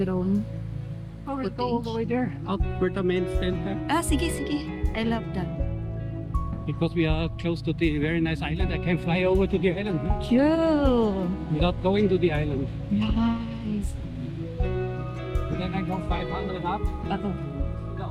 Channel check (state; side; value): identical; both; correlation 1.00